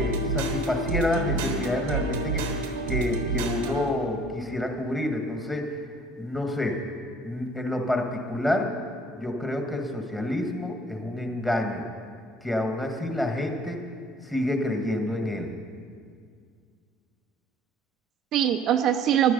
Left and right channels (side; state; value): both; normal; correlation 0.53